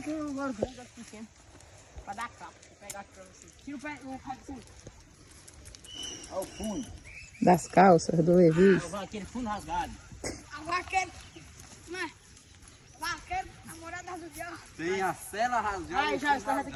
que eu agora vou dar pequeno. Pra dar capa. Vou pegar aqui pra você. Tira o pé do fundo. Olha o fundo. Das calças, do Levi. Aquele fundo rasgado. A vaqueira. Né? Vaqueira, namorada do diabo. Tem a cela rasgada. Ai, já, está aqui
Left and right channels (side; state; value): both; identical; correlation 1.00